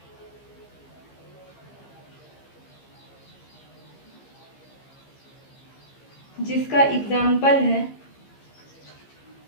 जिसका एग्जाम्पल है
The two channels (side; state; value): right; late; 15 ms